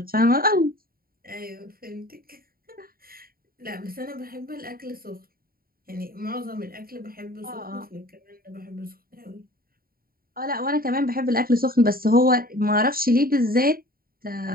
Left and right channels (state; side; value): late; left; 0.43 ms